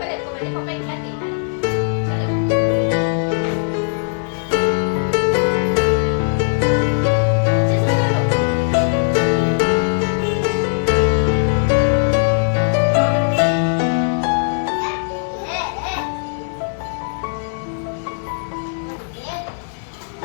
पण येतो म्हणजे पप्पा 1 लाख देणार.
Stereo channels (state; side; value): silent; right; digital silence